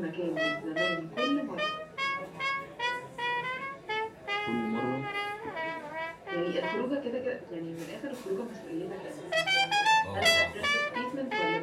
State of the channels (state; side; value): identical; both; correlation 1.00